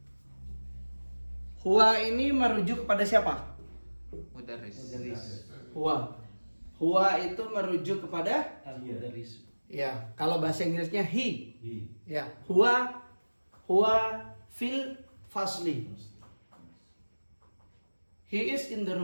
Huwa ini merujuk kepada siapa? Mudarris. Huwa. Huwa itu merujuk kepada ya, kalau bahasa Inggrisnya he. Ya, huwa fil fasli. He is in the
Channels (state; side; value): inverted; both; correlation -1.00